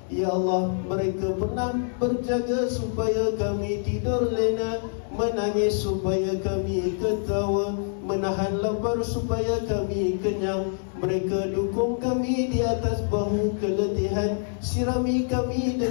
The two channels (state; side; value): silent; right; digital silence